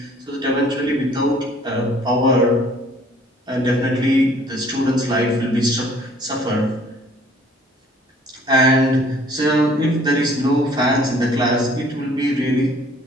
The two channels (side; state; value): both; normal; correlation 0.57